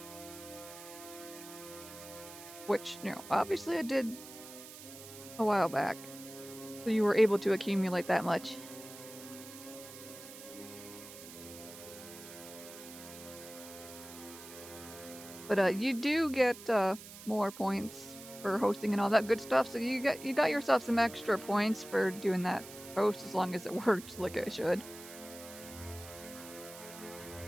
Which, you know, obviously I did a while back. So you were able to accumulate that much. But you do get more points for hosting and all that good stuff, so you got yourself some extra points for doing that host as long as it worked like it should.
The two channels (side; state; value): right; noise; hiss, 15 dB below the sound